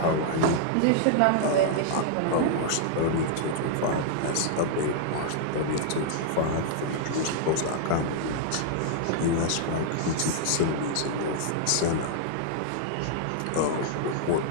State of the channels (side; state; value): both; different; correlation -0.01